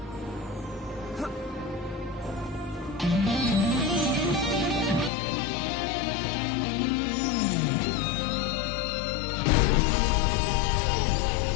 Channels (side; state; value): right; drops out; at 5.1 s